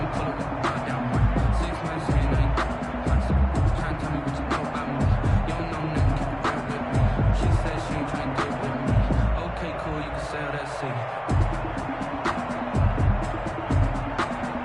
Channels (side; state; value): both; identical; correlation 1.00